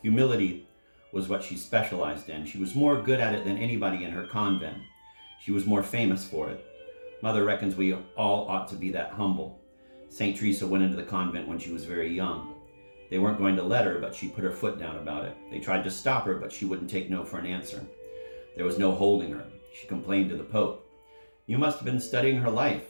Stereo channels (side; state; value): both; inverted; correlation -1.00